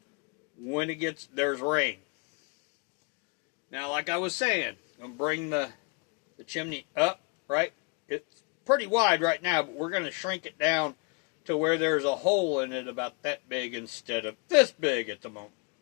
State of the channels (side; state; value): right; quieter; 31.7 dB